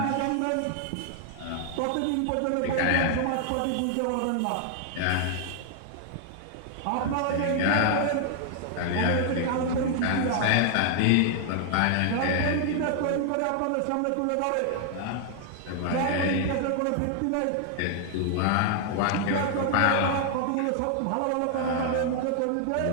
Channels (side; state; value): both; different; correlation 0.00